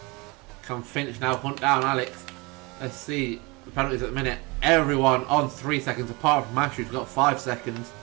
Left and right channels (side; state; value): left; quieter; 26.3 dB